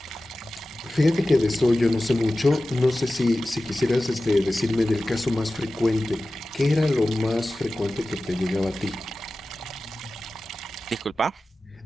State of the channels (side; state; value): both; normal; correlation 0.95